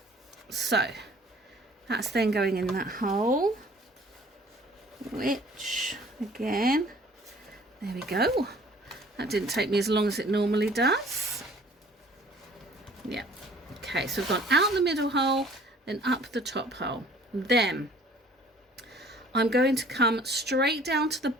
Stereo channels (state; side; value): normal; both; correlation 0.53